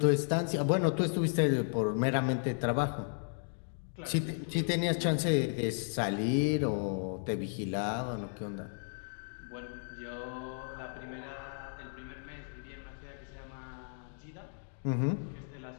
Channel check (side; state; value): right; silent; digital silence